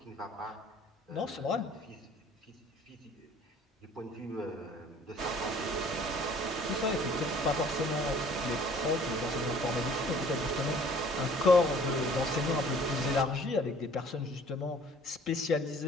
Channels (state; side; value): normal; both; correlation 0.53